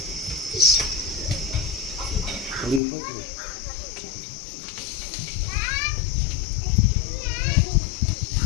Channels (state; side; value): drops out; right; at 2.8 s